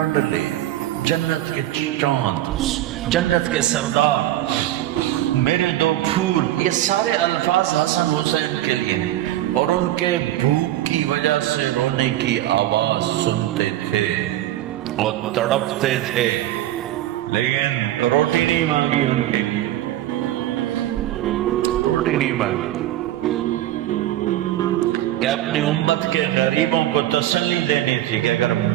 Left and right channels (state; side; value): quieter; left; 14.0 dB